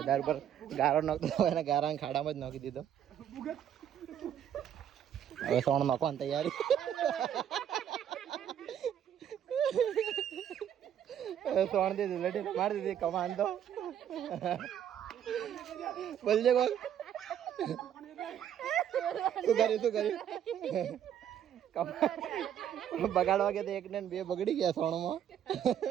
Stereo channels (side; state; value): left; quieter; 9.7 dB